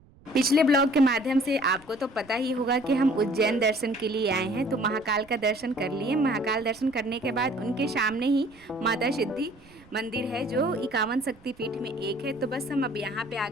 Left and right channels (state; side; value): noise; right; rumble, 26 dB below the sound